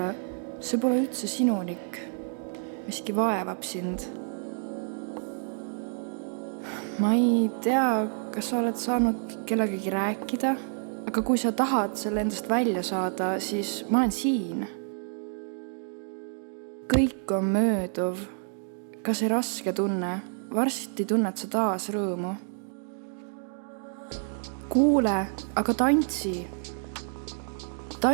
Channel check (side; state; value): left; silent; 58 dB below the other